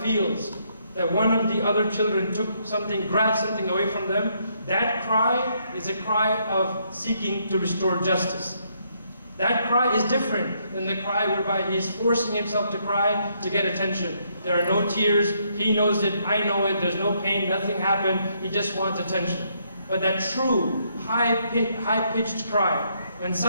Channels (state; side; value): inverted; both; correlation -0.73